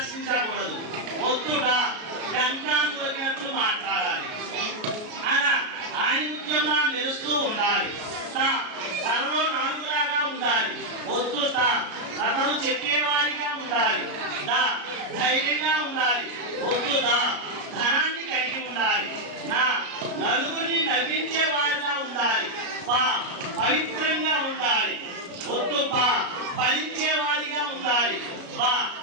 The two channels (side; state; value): left; late; 33 ms